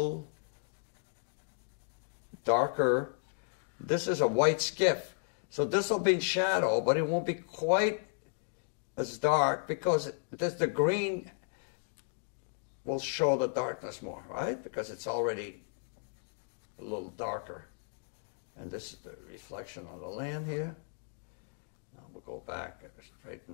darker. This is a white skiff. So this will be in shadow, but it won't be quite as dark because the green will show the darkness more, right? Because it's already a little darker. And this is the reflection on the land here. Now we'll go back and straighten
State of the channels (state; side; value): silent; right; digital silence